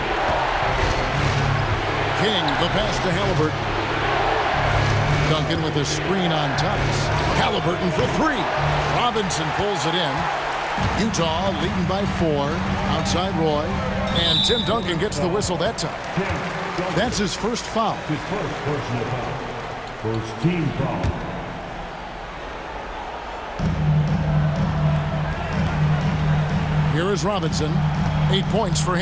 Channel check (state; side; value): identical; both; correlation 1.00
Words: King, the pass to Halliburton. Duncan with a screen on Thomas. Halliburton for 3. Robinson pulls it in. Utah leading by 4. Outside Roy. And Tim Duncan gets the whistle that time. That's his first foul. His first personal foul. First team foul. Here is Robinson. 8 points for